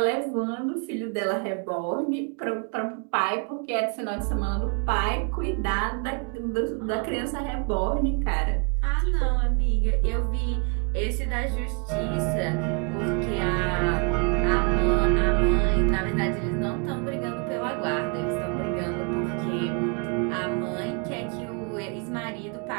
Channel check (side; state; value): left; quieter; 34.8 dB